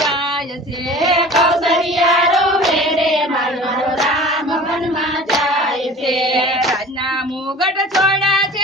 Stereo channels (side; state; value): both; normal; correlation 0.41